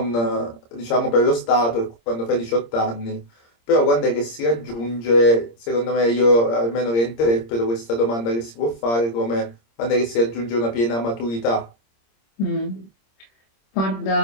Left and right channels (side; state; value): right; late; 26 ms